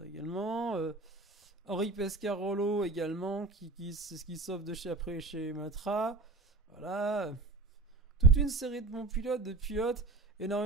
également. Henri Pescarolo également qui sauve après chez Matra. Voilà. Toute une série de bons pilotes,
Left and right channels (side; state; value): left; quieter; 3.1 dB